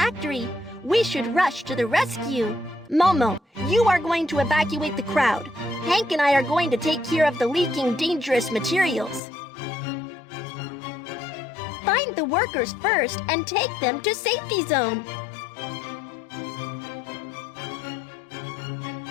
We should rush to the rescue. Momo, you are going to evacuate the crowd. Hank and I are going to take care of the leaking dangerous materials. Find the workers first and take them to safety zone.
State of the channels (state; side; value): drops out; right; at 9.2 s